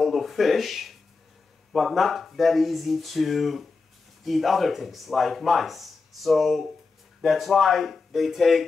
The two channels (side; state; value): right; quieter; 4.3 dB